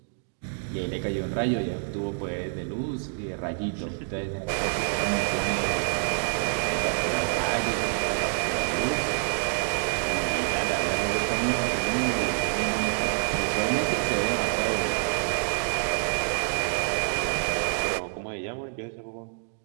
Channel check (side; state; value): left; silent; digital silence